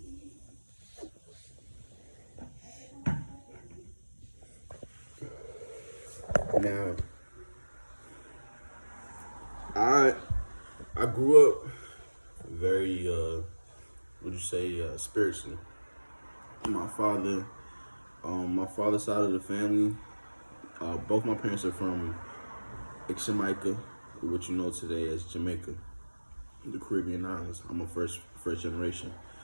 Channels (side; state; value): both; inverted; correlation -1.00